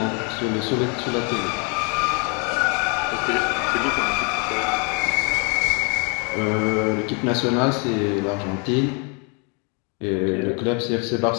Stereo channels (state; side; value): quieter; right; 35.1 dB